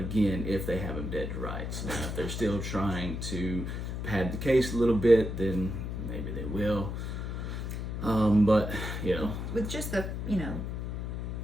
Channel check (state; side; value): noise; left; hum, 4 dB below the sound